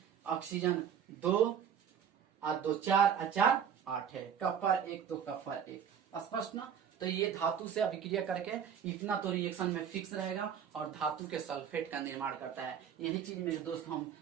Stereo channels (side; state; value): left; quieter; 8.2 dB